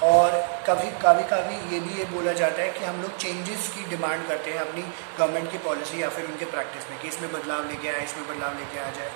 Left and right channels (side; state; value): left; silent; digital silence